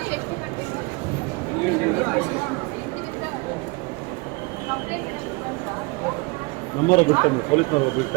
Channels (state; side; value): quieter; left; 26.8 dB